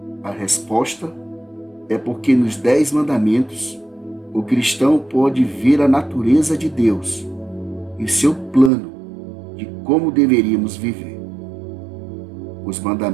A resposta é porque nos 10 mandamentos o cristão pode ver a natureza de Deus e seu plano de como deveríamos viver. Os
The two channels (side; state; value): left; drops out; at 8.7 s